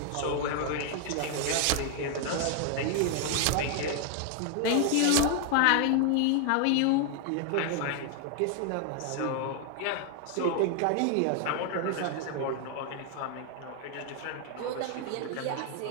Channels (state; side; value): different; both; correlation 0.00